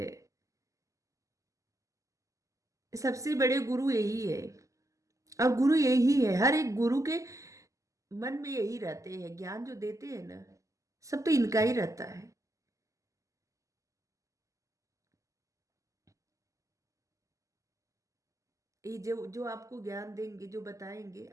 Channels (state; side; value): late; left; 0.16 ms